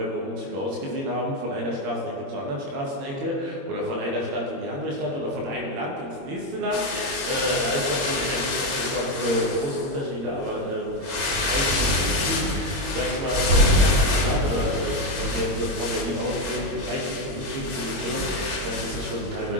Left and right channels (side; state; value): left; late; 21 ms